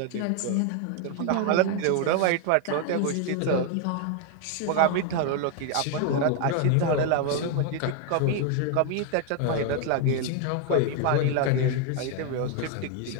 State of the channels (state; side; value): different; both; correlation 0.01